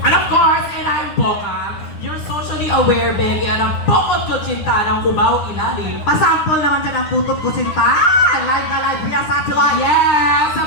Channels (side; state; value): right; late; 9.8 ms